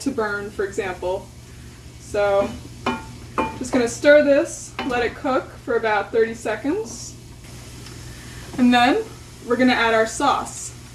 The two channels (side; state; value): both; identical; correlation 1.00